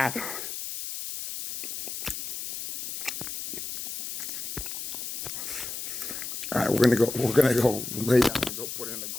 All right, we're gonna go lay down and go put in a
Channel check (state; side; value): noise; left; hiss, 6 dB below the sound